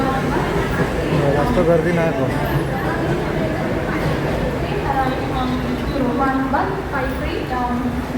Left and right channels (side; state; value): both; identical; correlation 1.00